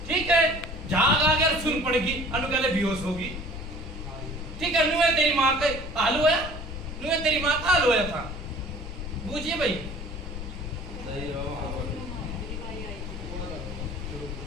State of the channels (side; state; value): left; noise; rumble, 8 dB below the sound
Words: ठीक है। झाग आ गया सुन पड़ेगी, अनु कहले बेहोश होगी ठीक है। नुए तेरी माँ का हाल हुआ, नुए तेरी माँ का हाल हुआ था बूझिए भाई।